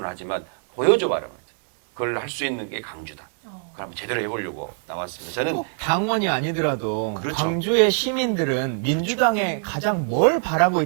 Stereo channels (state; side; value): silent; left; 63 dB below the other